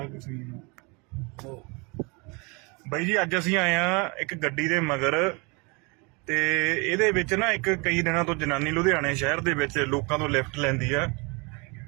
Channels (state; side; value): quieter; left; 29.4 dB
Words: ਕੁਛ ਨਹੀਂ। ਬਾਈ ਜੀ ਅੱਜ ਅਸੀਂ ਆਏ ਆ ਇੱਕ ਗੱਡੀ ਦੇ ਮਗਰ ਤੇ ਇਹਦੇ ਵਿੱਚ ਨਾ ਇੱਕ ਕਈ ਦਿਨਾਂ ਤੋਂ ਜਨਾਨੀ ਲੁਧਿਆਣੇ ਸ਼ਹਿਰ ਦੇ ਵਿੱਚ ਲੋਕਾਂ ਤੋਂ ਲਿਫਟ ਲੈਂਦੀ ਆ